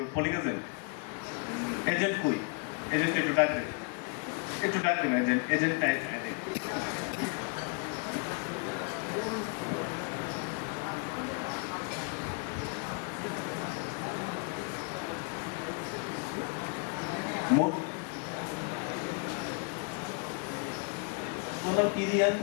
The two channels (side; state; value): right; quieter; 35.7 dB